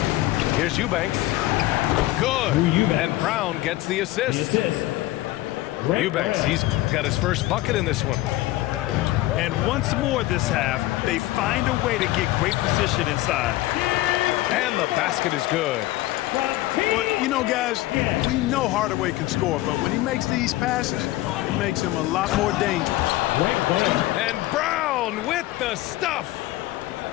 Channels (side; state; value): right; quieter; 17.1 dB